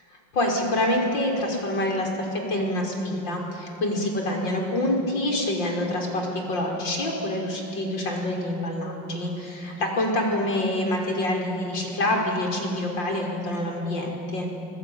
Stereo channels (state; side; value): late; right; 5.7 ms